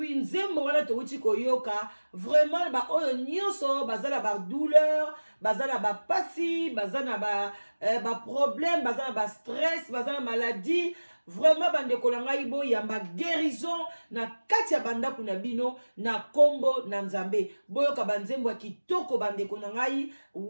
nzembo wana touti koyoka vraiment ba oyo nyonso bazala ba douleur bazala ba pasi bazana ba problème bazana ba stress bazana maladie vraiment bandeko na ngai bo yamba guérison na kati ya bandako na bino na kombo na nzambe boyoka banzembo ya kitoko bandeko na ngai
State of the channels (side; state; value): both; inverted; correlation -1.00